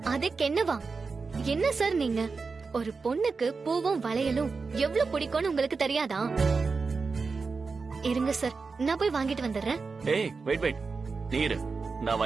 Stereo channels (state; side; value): quieter; left; 4.5 dB